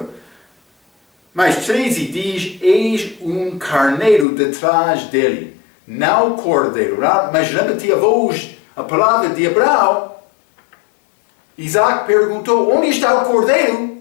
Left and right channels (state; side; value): drops out; right; at 4.2 s